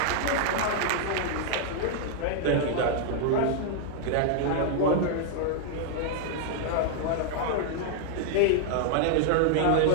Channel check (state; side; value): different; both; correlation 0.00